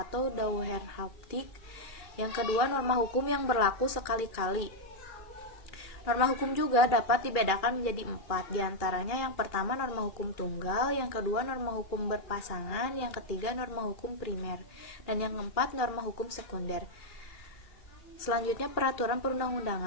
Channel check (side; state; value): right; late; 2.4 ms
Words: dauerhaftig. Yang kedua norma hukum yang berlaku sekali-kali. Norma hukum juga dapat dibedakan menjadi 4, diantaranya yang pertama norma hukum tunggal, yang kedua norma hukum berpasangan, yang ketiga norma hukum primer, dan yang keempat norma hukum sekunder. Selanjutnya peraturan